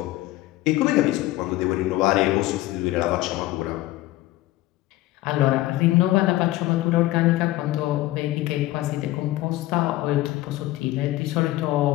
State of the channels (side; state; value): right; quieter; 16.9 dB